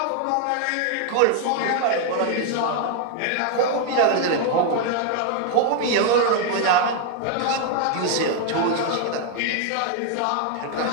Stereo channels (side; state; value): both; different; correlation 0.00